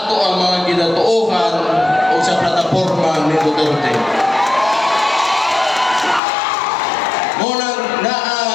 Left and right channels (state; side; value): drops out; right; at 6.2 s